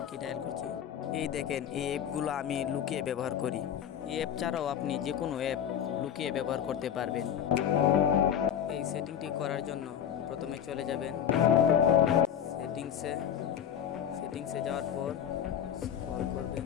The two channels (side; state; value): right; quieter; 9.2 dB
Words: কি ডায়াল করছি। এই দেখেন এই অ্যাপগুলো আমি লুকিয়ে ব্যবহার করি। এই অ্যাপ ছাড়াও আপনি যে কোনো অ্যাপ লুকিয়ে ব্যবহার করতে পারবেন। এই সেটিংটি করার জন্য প্রথমে চলে যাবেন সেটিংসে যাওয়ার পর স্ক্রল করবেন।